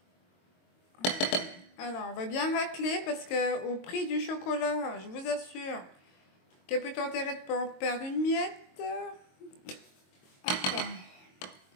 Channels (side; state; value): right; late; 22 ms